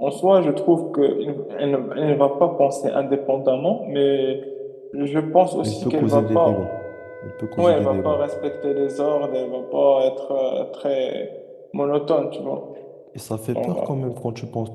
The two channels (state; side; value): identical; both; correlation 1.00